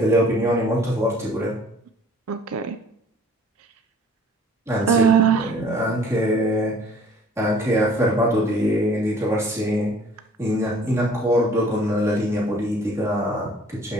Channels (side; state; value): both; normal; correlation 0.53